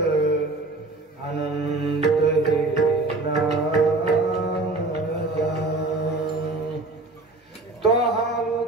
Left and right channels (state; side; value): quieter; left; 3.2 dB